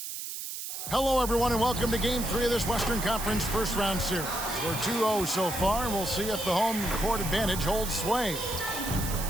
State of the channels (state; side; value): noise; right; hiss, 7 dB below the sound